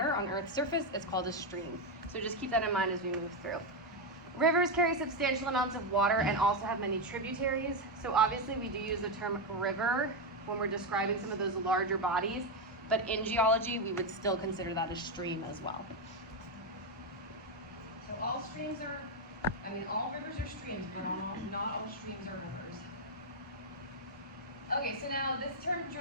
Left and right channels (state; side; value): normal; both; correlation 0.05